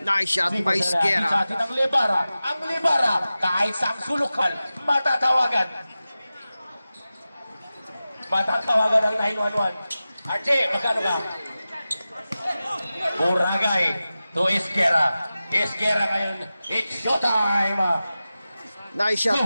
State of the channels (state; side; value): inverted; both; correlation -0.95